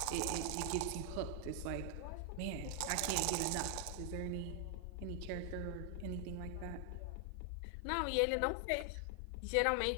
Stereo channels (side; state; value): both; different; correlation 0.00